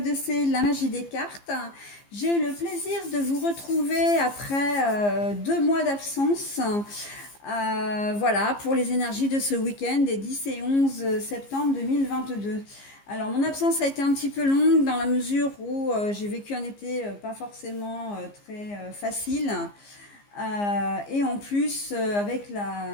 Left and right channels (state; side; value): late; right; 15 ms